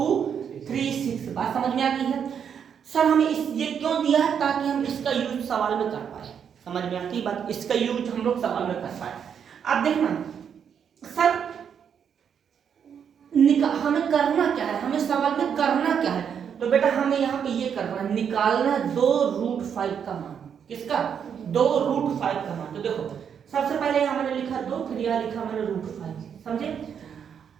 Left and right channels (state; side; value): quieter; left; 7.7 dB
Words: बात समझ में आ गई है? सर हमें ये क्यों दिया है? ताकि हम इसका यूज सवाल में कर पाए। समझ में आती है बात? इसका यूज हम लोग सवाल में कर पाए। अब देखना सर हमें करना क्या है, हमें सवाल में करना क्या है? तो बेटा हमें यहाँ पे ये करना है, निकालना 2√5 का मान। किसका? 2√5 का मान। तो देखो सबसे पहले यहाँ मैंने लिखा 2, फिर यहाँ लिखा मैंने √5। समझे?